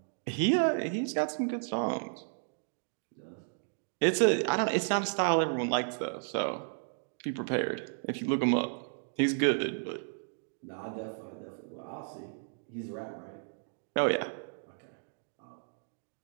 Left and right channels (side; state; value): left; silent; digital silence